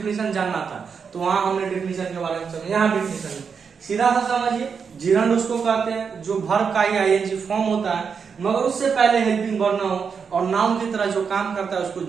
जानना था तो वहां हमने डेफिनेशन के बारे में समझा, यहाँ डेफिनेशन सीधा सा समझिए। जिरंड उसको कहते हैं जो वर्ब का ही आईएनजी फॉर्म होता है मगर उससे पहले हेल्पिंग वर्ब ना हो और नाउन की तरह जो काम करता है उसको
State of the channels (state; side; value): quieter; left; 6.1 dB